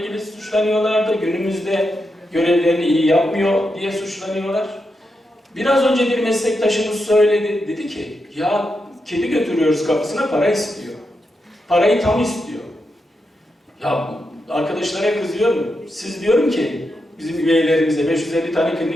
suçlanıyorlardı. Günümüzde görevlerini iyi yapmıyor diye suçlanıyorlar. Biraz önce bir meslektaşımız söyledi. Dedi ki ya kedi götürüyoruz kapısına, para istiyor. Parayı tam istiyor. Ya arkadaşlara kızıyorum. Siz diyorum ki bizim üyelerimize 550 tane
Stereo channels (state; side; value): normal; both; correlation 0.86